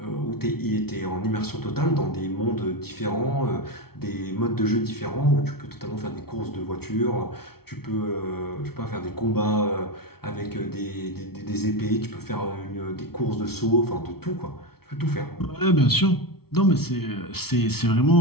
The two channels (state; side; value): late; right; 0.95 ms